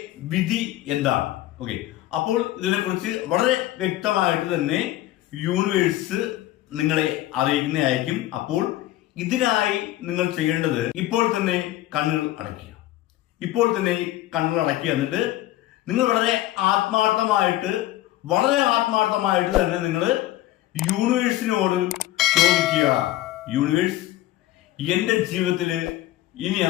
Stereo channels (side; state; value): right; quieter; 15.1 dB